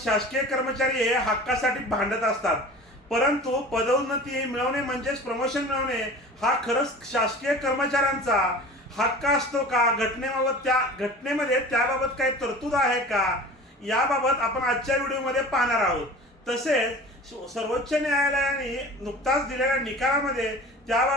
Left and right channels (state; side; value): normal; both; correlation 0.39